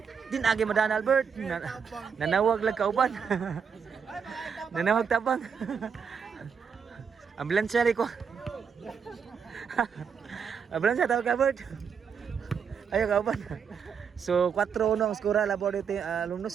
Din agi madana Albert. Nanawag lang kauban. Nanawag tabang. Ambulansya ri ko. Ambulansya tawag Albert. Ayo kauban. So 4-1 ang skora labor dito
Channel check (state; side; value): quieter; left; 6.6 dB